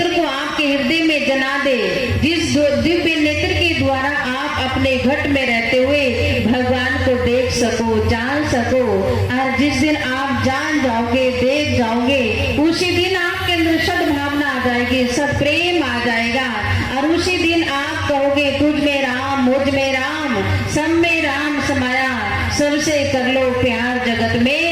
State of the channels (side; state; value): both; identical; correlation 1.00